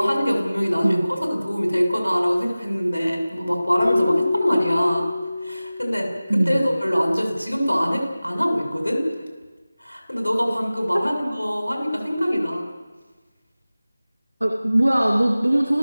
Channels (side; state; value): both; inverted; correlation -0.97